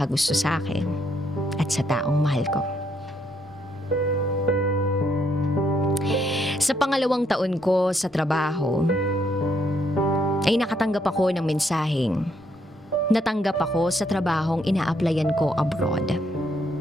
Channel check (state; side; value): normal; both; correlation 0.73